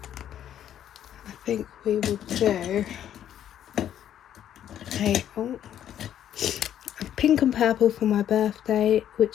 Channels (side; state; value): right; quieter; 10.5 dB